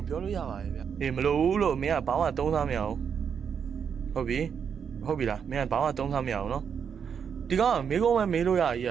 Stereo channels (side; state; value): left; quieter; 7.2 dB